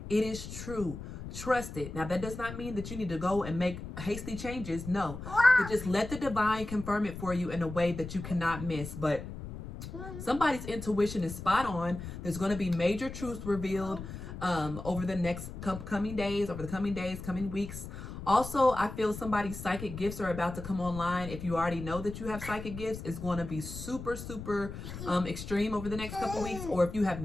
it is true. Trust it. Now, that does not mean that you need to go and make hasty changes. No, but just let the divine confirm it for you in a way that you cannot miss. But somebody's intuition is spot on. There's going to be major truths revealed over the next coming days, coming weeks. Also, I feel somebody's psychic gifts are about to come online. If you already know that you have psychic gifts, it's going to be super extreme over the next couple weeks. Or if you have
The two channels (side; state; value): left; noise; rumble, 9 dB below the sound